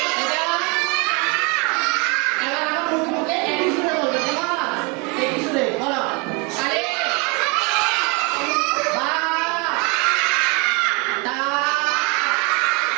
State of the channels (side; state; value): left; quieter; 30.3 dB